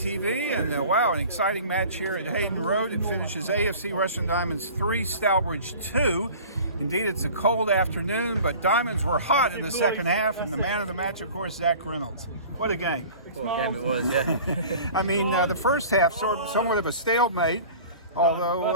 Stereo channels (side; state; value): both; inverted; correlation -0.42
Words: and wow, an exciting match here at Hayden Road. It finishes AFC Rushden Diamonds 3, Stourbridge 2. Indeed, it's a cold afternoon, but Diamonds were hot in the second half, and the man of the match, of course, Zack Reynolds. What a game. What a game it was, yeah. I mean, the first half, somewhat of a stalemate,